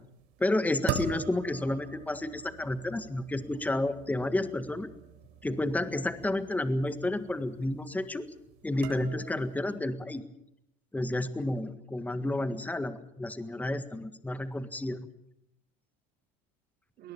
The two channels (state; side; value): normal; both; correlation 0.84